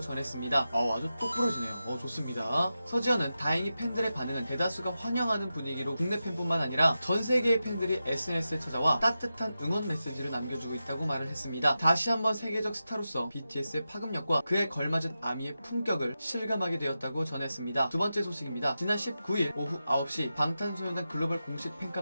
아주 똑부러지네요. 좋습니다. 서지현은 다행히 팬들의 반응은 대다수가 환영하는 분위기로 국내 팬뿐만 아니라 전 세계의 팬들이 SNS에 찾아와 따뜻한 응원 메시지를 남겨주고 있다고 말을 했습니다. 다시 한번 세계적 스타로서 BTS의 파급력과 그에 걸맞은 아미의 품격을 실감하게 되었다고 전했습니다. 두 번째 소식입니다. 지난 19일 오후 9시 방탄소년단 글로벌 공식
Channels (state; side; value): inverted; both; correlation -0.91